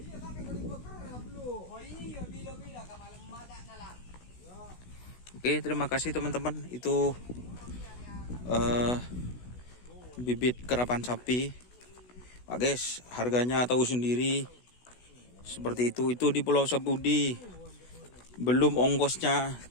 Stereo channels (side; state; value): right; late; 16 ms